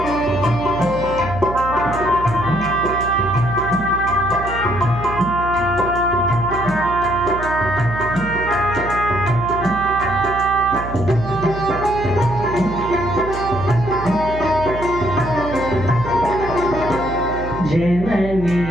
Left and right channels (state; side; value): noise; right; hum, 9 dB below the sound